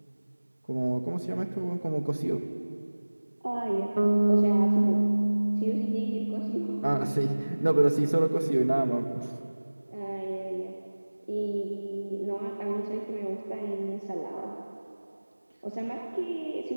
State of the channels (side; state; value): both; inverted; correlation -1.00